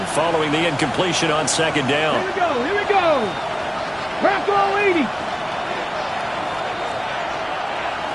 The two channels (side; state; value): both; identical; correlation 1.00